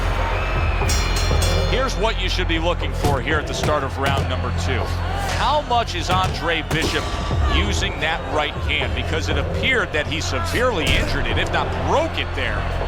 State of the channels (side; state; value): both; identical; correlation 1.00